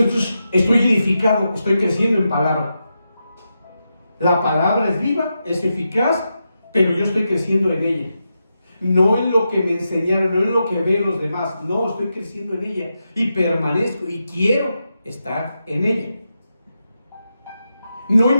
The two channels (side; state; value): both; inverted; correlation -0.88